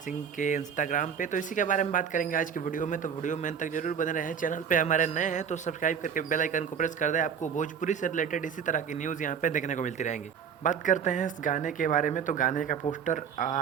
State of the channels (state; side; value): quieter; left; 7.4 dB